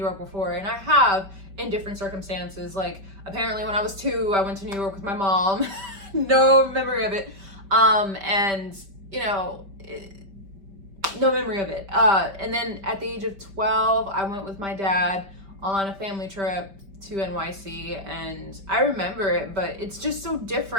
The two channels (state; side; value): late; left; 5.1 ms